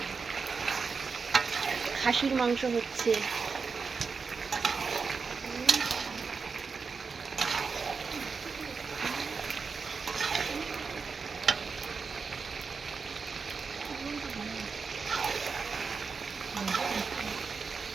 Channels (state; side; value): quieter; left; 5.0 dB